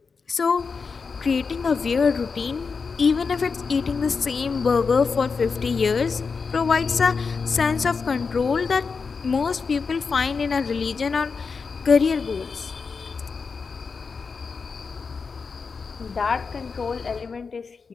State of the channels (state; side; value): quieter; right; 5.1 dB